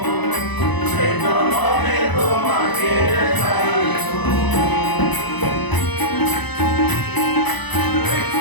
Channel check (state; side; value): late; right; 1.0 ms